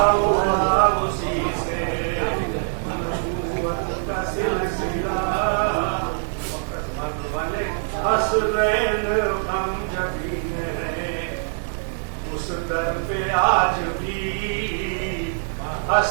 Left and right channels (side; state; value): left; silent; digital silence